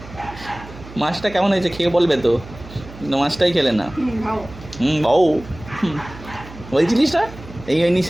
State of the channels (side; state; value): right; noise; hum, 16 dB below the sound